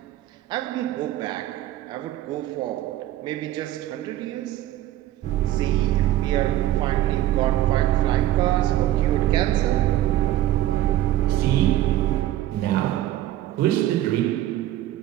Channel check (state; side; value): quieter; left; 14.0 dB